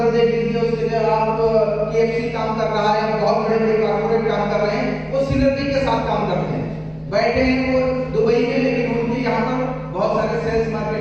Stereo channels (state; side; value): identical; both; correlation 1.00